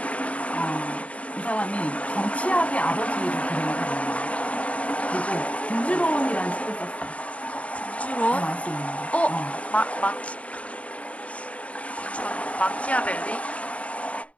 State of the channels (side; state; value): right; late; 0.065 ms